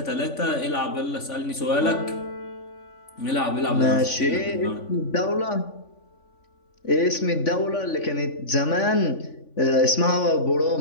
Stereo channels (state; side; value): late; right; 3.5 ms